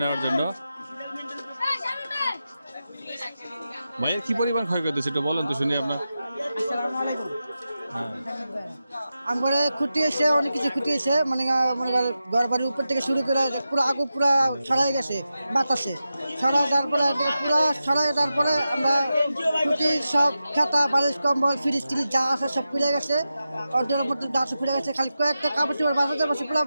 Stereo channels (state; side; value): inverted; both; correlation -0.91